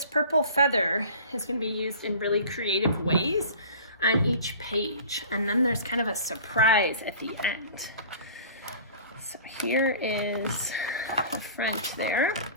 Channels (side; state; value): both; inverted; correlation -0.43